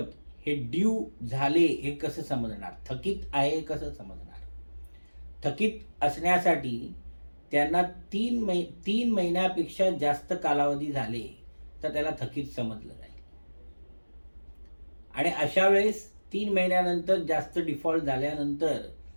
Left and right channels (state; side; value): inverted; both; correlation -1.00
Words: हे ड्यू झाले हे कसं समजणार? थकीत आहे कसं समजणार? थकीत असण्यासाठी त्यांना 3 महिन्यापेक्षा जास्त कालावधी झाले तर त्याला थकीत समजलं जाईल. आणि अशा वेळेस 3 महिन्यानंतर जास्त डिफॉल्ट झाल्यानंतर